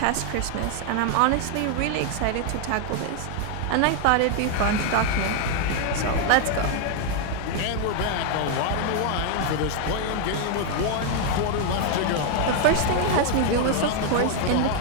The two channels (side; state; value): both; different; correlation 0.00